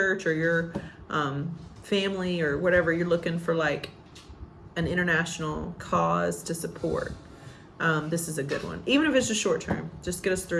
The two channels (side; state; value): both; identical; correlation 1.00